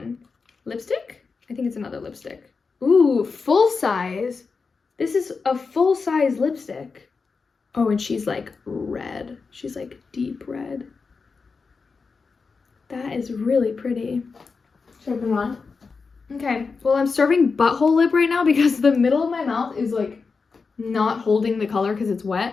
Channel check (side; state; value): right; quieter; 4.8 dB